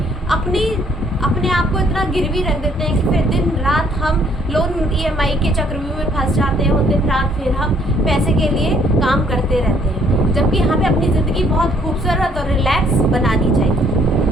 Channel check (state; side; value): normal; both; correlation 0.64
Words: अपने आप को इतना गिरवी रख देते हैं कि फिर दिन रात हम लोन ईएमआई के चक्रव्यूह में फंस जाते हैं और दिन रात फिर हम पैसे के लिए काम करते रहते हैं, जबकि हमें अपनी ज़िंदगी बहुत खूबसूरत और रिलैक्स बनानी चाहिए।